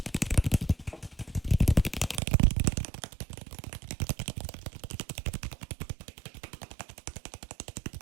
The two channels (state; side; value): drops out; left; at 2.2 s